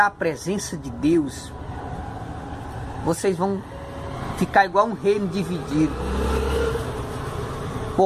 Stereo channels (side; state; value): both; identical; correlation 1.00